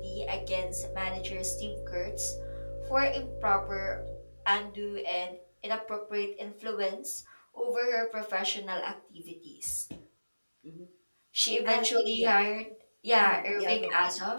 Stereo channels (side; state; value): both; inverted; correlation -1.00